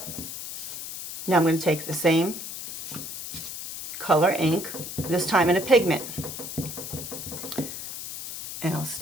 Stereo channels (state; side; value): noise; left; hiss, 8 dB below the sound